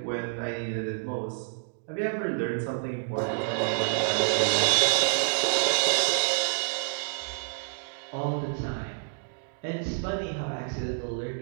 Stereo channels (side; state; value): left; silent; digital silence